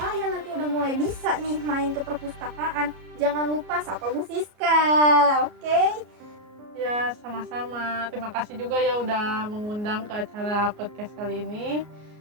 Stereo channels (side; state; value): left; late; 33 ms